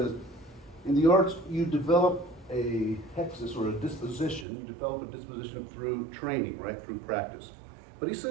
in the arts, you develop a hexis or a disposition. You develop a disposition through training, right, through practice. But he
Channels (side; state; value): left; drops out; at 4.5 s